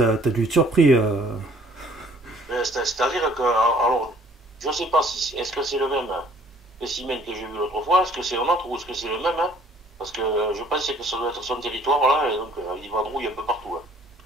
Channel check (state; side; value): normal; both; correlation 0.57